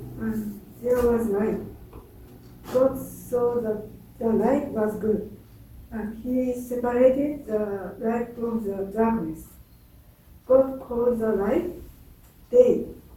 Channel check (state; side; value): identical; both; correlation 1.00